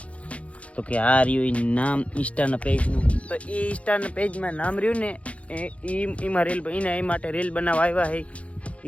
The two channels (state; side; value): late; right; 0.064 ms